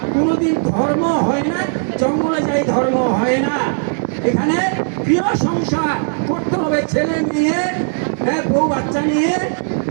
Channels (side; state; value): left; silent; 62 dB below the other